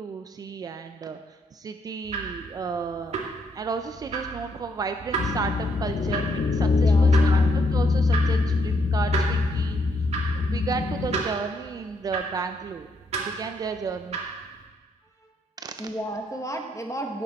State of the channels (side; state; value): both; normal; correlation 0.74